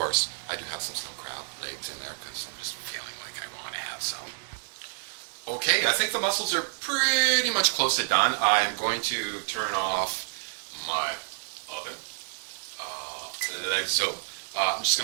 I do have some snow crab legs in there because I'm just feeling like I want to have some. Okay, I think the mussels are pretty much close to done. I'm going to turn off my oven like so. I'm just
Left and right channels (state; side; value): silent; left; digital silence